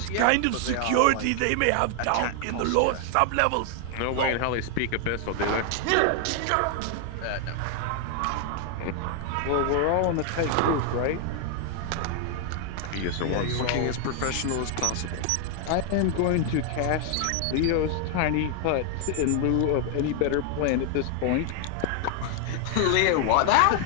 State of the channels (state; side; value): different; both; correlation 0.00